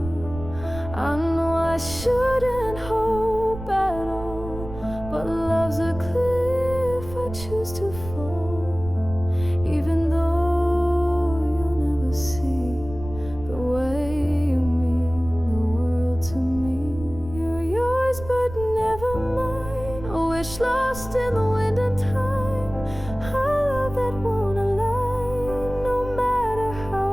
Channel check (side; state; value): right; noise; rumble, 12 dB below the sound